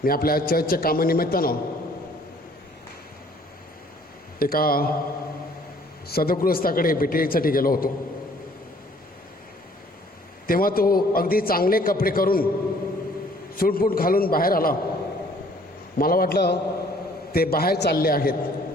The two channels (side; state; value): both; normal; correlation 0.58